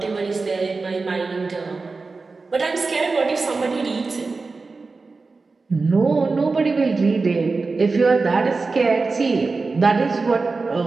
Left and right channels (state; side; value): quieter; left; 4.0 dB